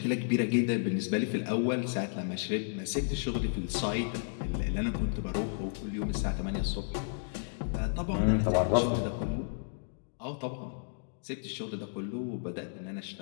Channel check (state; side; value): silent; right; digital silence